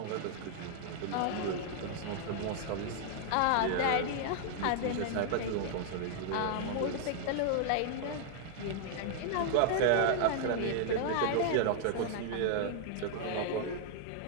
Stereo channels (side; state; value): both; different; correlation -0.01